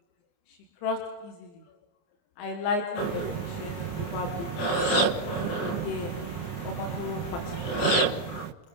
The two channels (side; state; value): right; late; 29 ms